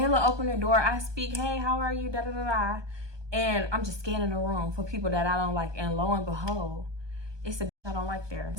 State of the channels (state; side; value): late; left; 1.2 ms